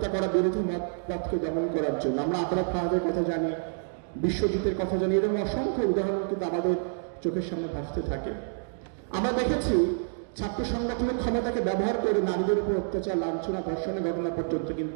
করা বিরোধী মতকে দমন করার জন্য। আমরা আবরার ফাহাদের কথা জানি, বিশ্বজিতের কথা জানি, এরকম অসংখ্য উদাহরণ কিন্তু আমাদের চোখের সামনে ভাসতে থাকে। আমরা দেখেছি ছাত্র সংগঠনের ক্ষমতাকে ব্যবহার করে নারীদের উপর অত্যাচার, লাঞ্ছনা, ধর্ষণের ঘটনা পর্যন্ত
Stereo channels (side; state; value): left; silent; digital silence